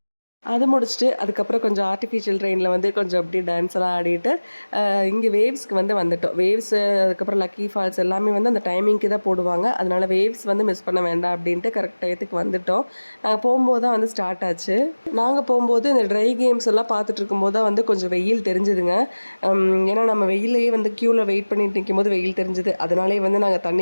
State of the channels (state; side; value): inverted; both; correlation -1.00